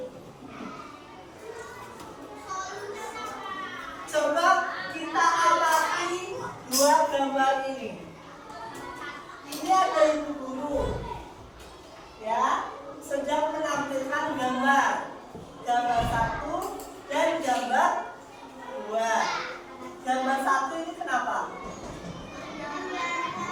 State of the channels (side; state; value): both; identical; correlation 1.00